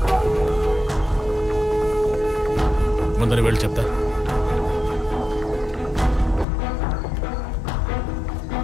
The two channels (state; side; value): drops out; right; at 6.5 s